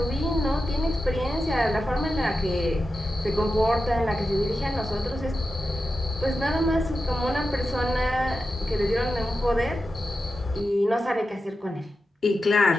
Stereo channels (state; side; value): normal; both; correlation 0.91